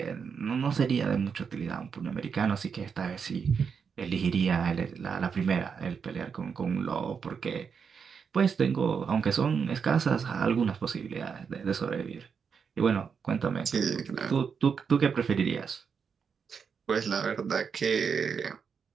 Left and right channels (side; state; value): left; quieter; 6.3 dB